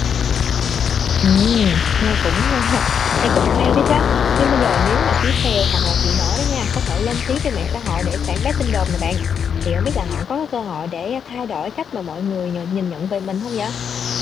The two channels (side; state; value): right; quieter; 7.4 dB